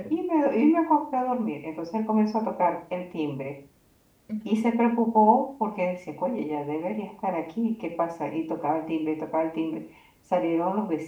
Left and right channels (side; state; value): both; identical; correlation 1.00